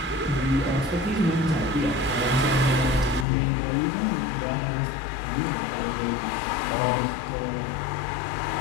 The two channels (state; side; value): drops out; right; at 3.2 s